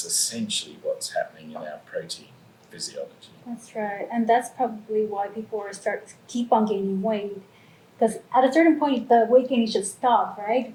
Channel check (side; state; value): both; identical; correlation 1.00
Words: essentially what's happening in our protein physiology. That's right, and that's probably why people keep on gaining weight, because at a certain point the weight gaining should stop, right?